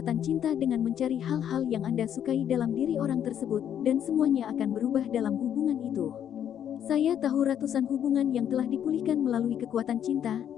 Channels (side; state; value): right; quieter; 9.5 dB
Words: cinta dengan mencari hal-hal yang Anda sukai dalam diri orang tersebut, dan semuanya akan berubah dalam hubungan itu. Saya tahu ratusan hubungan yang telah dipulihkan melalui kekuatan cinta,